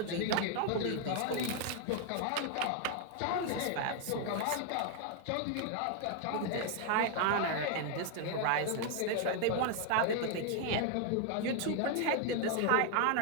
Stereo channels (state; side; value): different; both; correlation 0.00